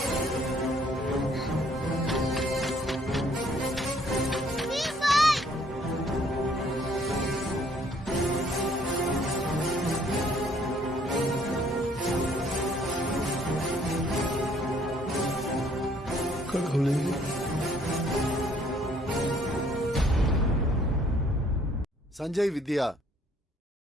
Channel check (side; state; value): both; normal; correlation 0.62